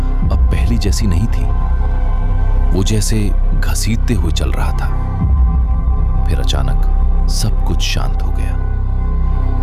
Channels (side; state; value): both; identical; correlation 1.00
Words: पहली जैसी नहीं थी। वो जैसे घसीटते हुए चल रहा था। फिर अचानक सब कुछ शांत हो गया।